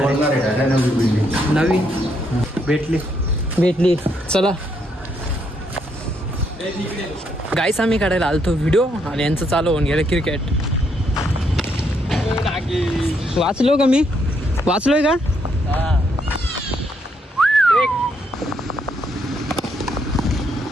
आहे. नवी भेटली. चला गाईस आम्ही काढायला आलतो व्हिडिओ आणि यांचं चालू होऊन गेलं क्रिकेट. वाचलो का मी? वाचलोय का?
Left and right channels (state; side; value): normal; both; correlation 0.75